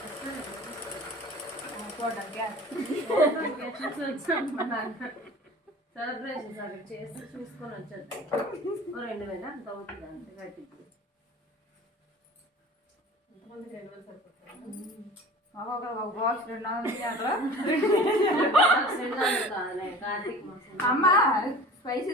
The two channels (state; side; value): normal; both; correlation 0.41